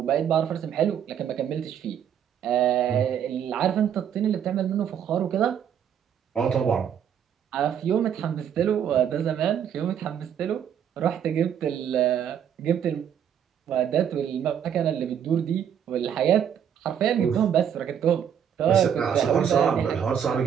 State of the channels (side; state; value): left; quieter; 8.8 dB